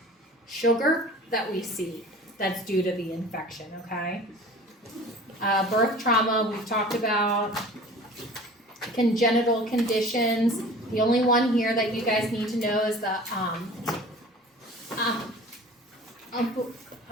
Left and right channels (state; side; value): normal; both; correlation 0.42